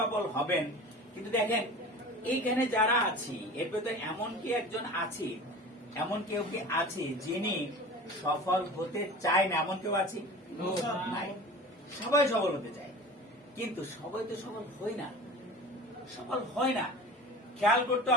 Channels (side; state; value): both; normal; correlation 0.37